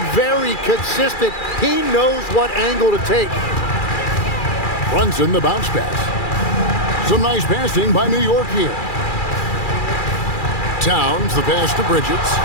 very consistent. He knows what angle to take. Brunson the bounce pass. Some nice passing by New York here. Towns the pass to Bridges.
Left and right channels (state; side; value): late; right; 2.4 ms